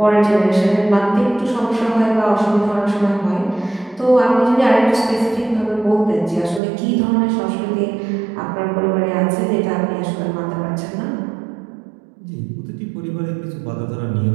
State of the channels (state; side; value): drops out; left; at 6.6 s